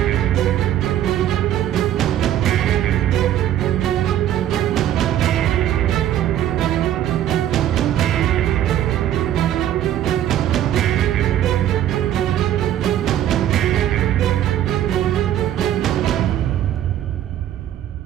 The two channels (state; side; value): quieter; left; 11.6 dB